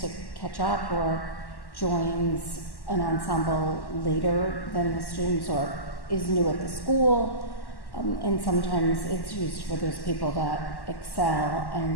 to catch up or joins an ensemble later than the students or is new at the school. And sometimes it's used for those people that excel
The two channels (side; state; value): right; late; 1.1 ms